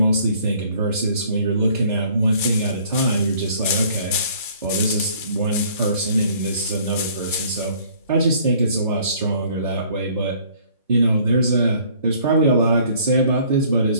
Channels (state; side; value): inverted; both; correlation -0.57